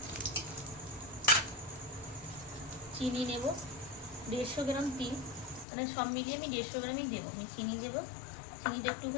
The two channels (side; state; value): right; drops out; at 5.7 s